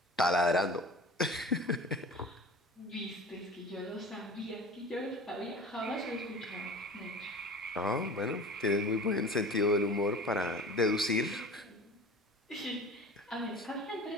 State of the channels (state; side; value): normal; both; correlation 0.38